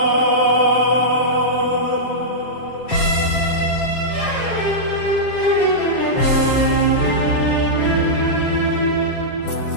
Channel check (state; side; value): late; right; 7.2 ms